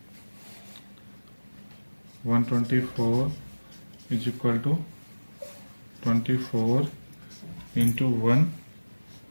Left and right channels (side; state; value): both; inverted; correlation -1.00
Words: 124 is equal to 24 into 1